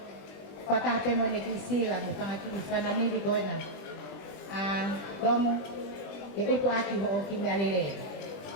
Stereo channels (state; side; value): late; right; 20 ms